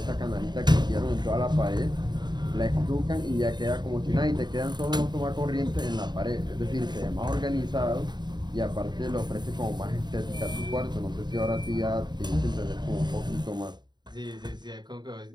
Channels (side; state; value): left; late; 0.21 ms